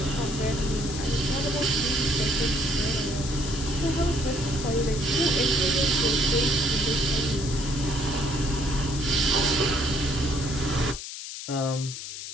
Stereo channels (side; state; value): left; noise; hiss, 9 dB below the sound